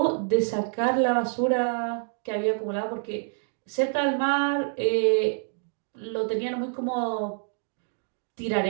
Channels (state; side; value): silent; left; 60 dB below the other